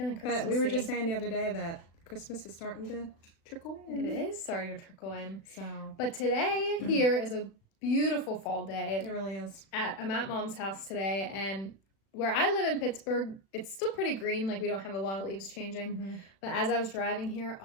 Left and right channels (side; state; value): right; late; 36 ms